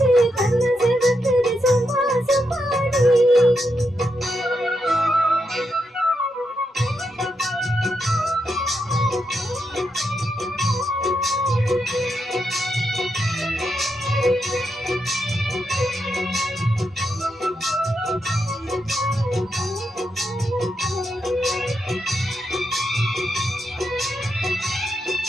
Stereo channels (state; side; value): normal; both; correlation 0.83